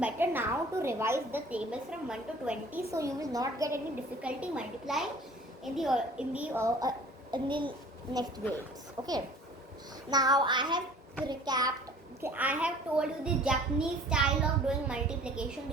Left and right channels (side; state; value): both; normal; correlation 0.49